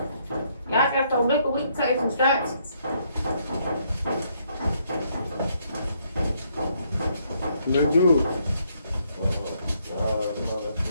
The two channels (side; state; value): both; inverted; correlation -0.71